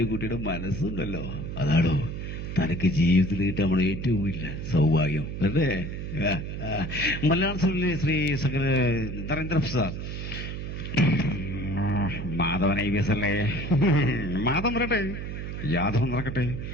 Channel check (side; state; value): right; noise; hum, 6 dB below the sound